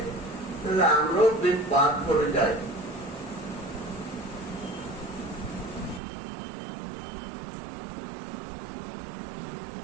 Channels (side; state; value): left; drops out; at 6.0 s